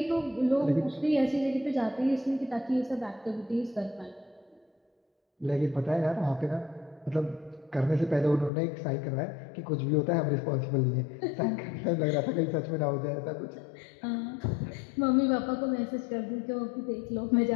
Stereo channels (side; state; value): right; drops out; at 8.5 s